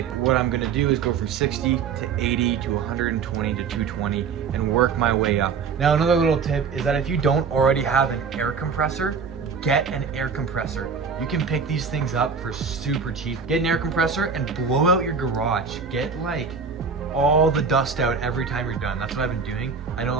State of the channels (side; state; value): left; quieter; 5.7 dB